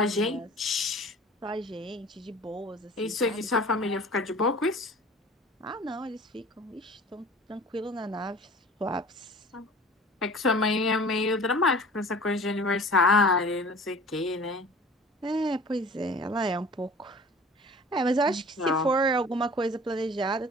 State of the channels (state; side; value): normal; both; correlation 0.44